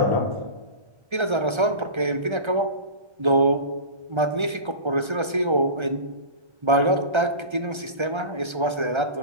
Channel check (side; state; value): left; late; 1.3 ms